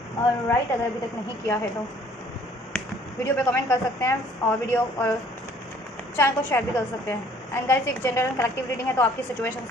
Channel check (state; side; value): normal; both; correlation 0.57